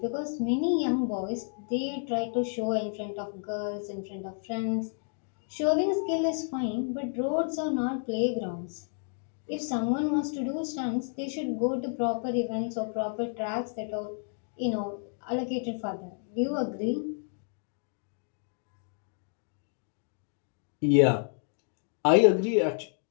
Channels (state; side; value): silent; right; 57 dB below the other